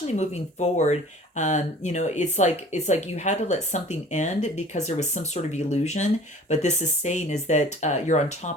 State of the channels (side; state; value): both; normal; correlation 0.47